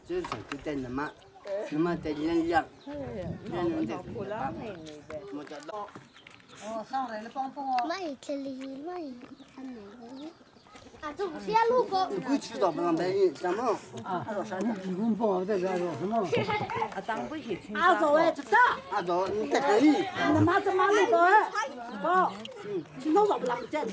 就是就在那么在人样，人的。我知道。哦，上来了，帮我。没这里没看哪个？啊，这不是路过。你不知道不让白人怎么？啊，啥呢？你公婆在这说什么？啊，当不起听。阿走哎，这个。阿走，你在这里。你妈怎么那个哎？不，今天早不拉不见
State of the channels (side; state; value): both; identical; correlation 1.00